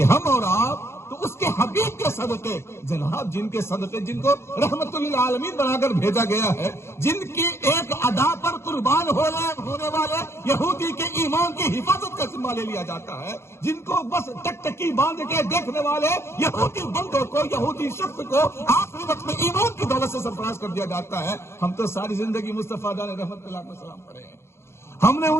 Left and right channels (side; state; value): right; late; 0.13 ms